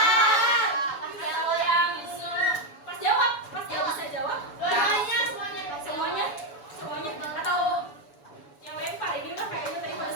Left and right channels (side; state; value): right; late; 7.0 ms